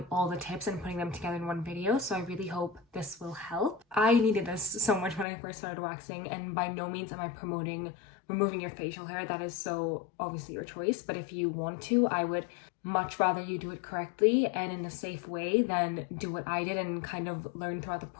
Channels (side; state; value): right; drops out; at 5.2 s